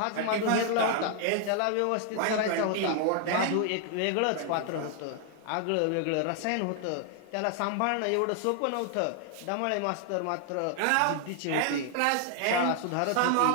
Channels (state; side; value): different; both; correlation 0.00